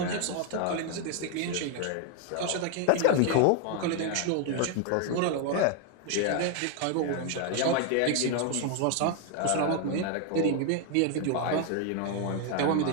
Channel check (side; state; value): both; different; correlation 0.01